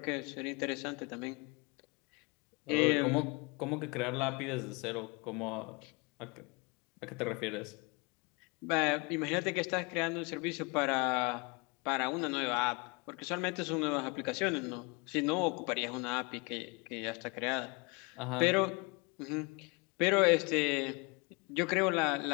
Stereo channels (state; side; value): quieter; right; 29.1 dB